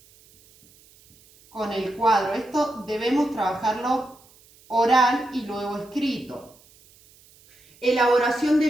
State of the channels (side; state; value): right; noise; hiss, 28 dB below the sound